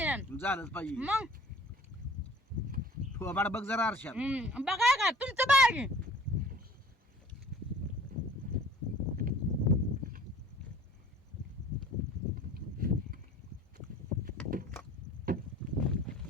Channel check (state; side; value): normal; both; correlation 0.49